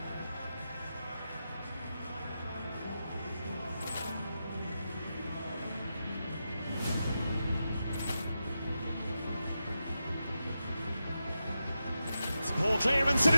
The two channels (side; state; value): both; inverted; correlation -0.89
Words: Ball clearance and